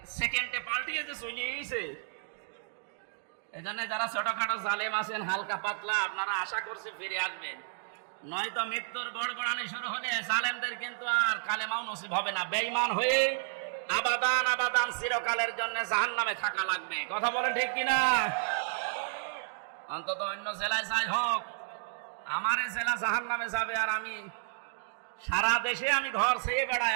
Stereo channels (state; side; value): silent; left; digital silence